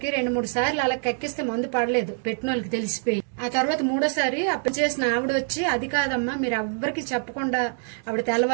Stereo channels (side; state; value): left; silent; 62 dB below the other